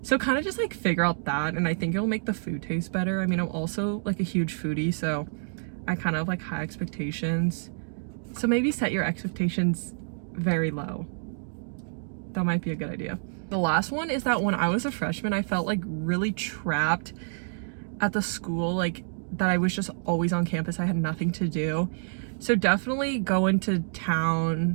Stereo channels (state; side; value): silent; left; digital silence